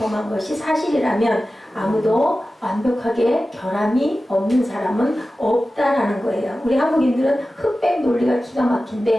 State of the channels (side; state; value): both; normal; correlation 0.95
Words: 것이 사실이라면 아무도 완벽하게 결함이 없는 사람은 없다라는 거예요. 우리 한국인들은 흑백 논리가 기가